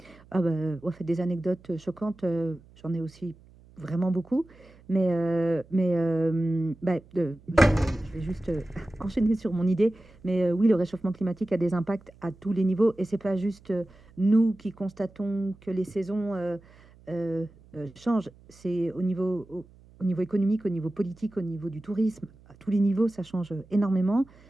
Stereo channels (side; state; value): right; noise; hum, 25 dB below the sound